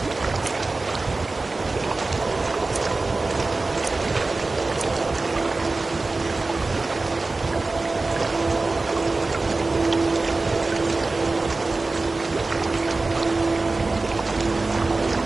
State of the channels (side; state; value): left; quieter; 3.5 dB